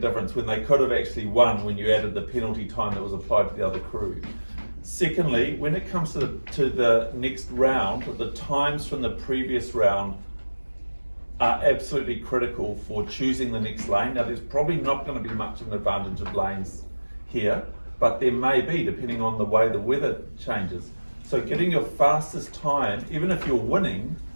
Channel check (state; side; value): inverted; both; correlation -1.00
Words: when they could have actually won when you added the penalty time that was applied to the other crew. Secondly, when it comes to the next round, the times from the previous round are absolutely critical for choosing the next lane. Now there's probably not going to be much of an advantage of lanes here, but there may be depending on the way the weather changes. So getting your fastest time, even if you're winning,